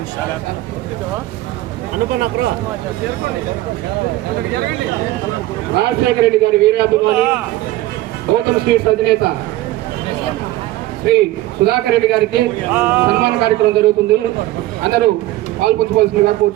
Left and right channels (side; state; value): left; quieter; 16.3 dB